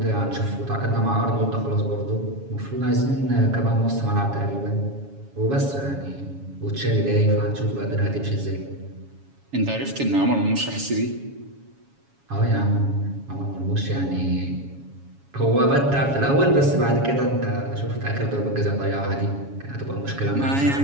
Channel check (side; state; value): left; late; 7.2 ms